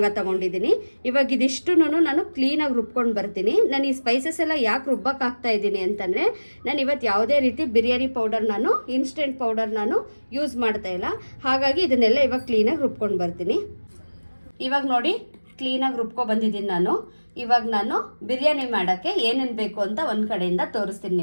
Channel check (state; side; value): inverted; both; correlation -1.00